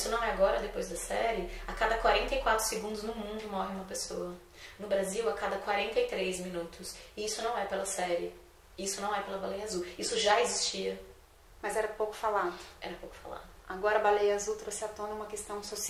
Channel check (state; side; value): identical; both; correlation 1.00